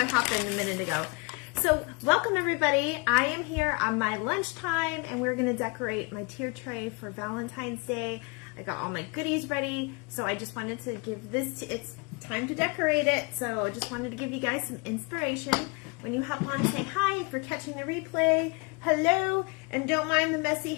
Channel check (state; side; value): quieter; right; 30.2 dB